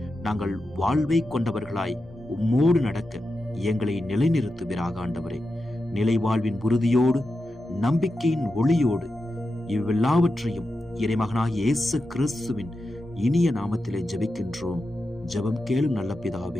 நாங்கள் வாழ்வை கொண்டவர்களாய் உம்மோடு நடக்க எங்களை நிலைநிறுத்துவீராக. ஆண்டவரே, நிலை வாழ்வின் உறுதியோடு நம்பிக்கையின் ஒளியோடு இவ்வெல்லாவற்றையும் இறைமகனாகிய இயேசு கிறிஸ்துவின் இனிய நாமத்திலே ஜெபிக்கின்றோம். ஜெபம் கேளும் நல்ல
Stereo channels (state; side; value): normal; both; correlation 0.90